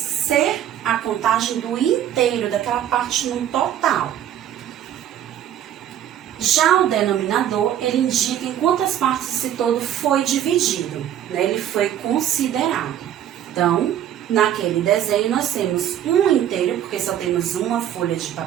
a contagem do inteiro, daquela parte no total. Já o denominador, ele indica em quantas partes esse todo foi dividido, né? Ele foi considerado. Então, naquele desenho, nós temos um inteiro, porque só temos uma folha de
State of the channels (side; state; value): left; quieter; 10.8 dB